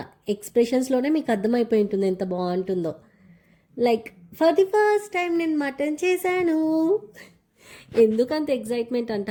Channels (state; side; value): identical; both; correlation 1.00